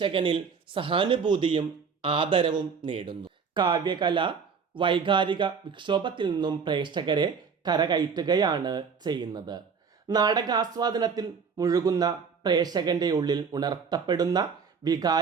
സഹാനുഭൂതിയും ആദരവും നേടുന്നു. കാവ്യകല വൈകാരിക വിക്ഷോഭത്തിൽ നിന്നും പ്രേക്ഷകരെ കരകയറ്റുകയാണ് ചെയ്യുന്നത്. നാടകാസ്വാദനത്തിൽ മുഴുകുന്ന പ്രേക്ഷകന്റെ ഉള്ളിൽ ഉണർത്തപ്പെടുന്ന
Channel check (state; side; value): quieter; left; 5.9 dB